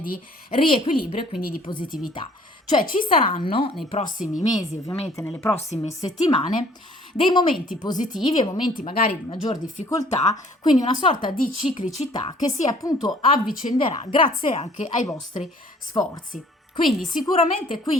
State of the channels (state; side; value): normal; both; correlation 0.56